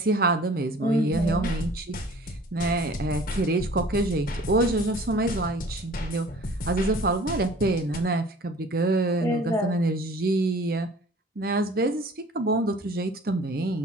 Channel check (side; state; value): both; normal; correlation 0.49